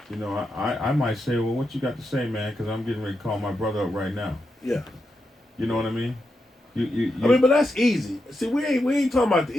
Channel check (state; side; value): normal; both; correlation 0.85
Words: you know, I might say, well, what you got to say, man? Because I'm getting ready to call my brother up right now. Yeah. You know what I mean? You I mean, but that's easy. See, we ain't talking about the